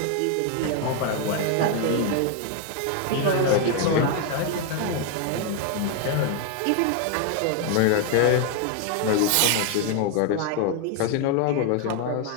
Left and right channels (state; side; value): different; both; correlation 0.01